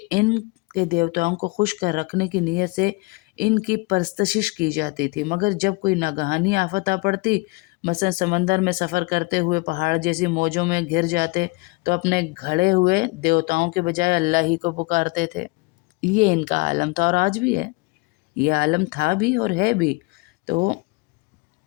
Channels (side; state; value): right; quieter; 25.9 dB